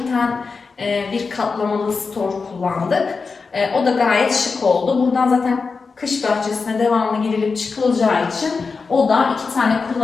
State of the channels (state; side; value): quieter; right; 4.7 dB